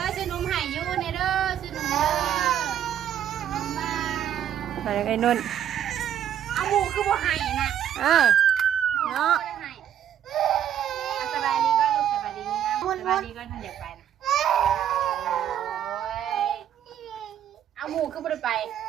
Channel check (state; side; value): quieter; left; 10.1 dB